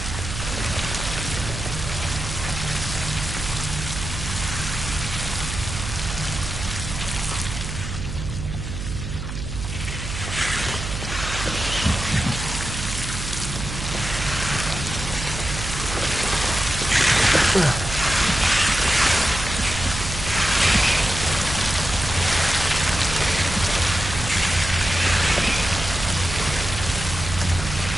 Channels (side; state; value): right; noise; hum, 6 dB below the sound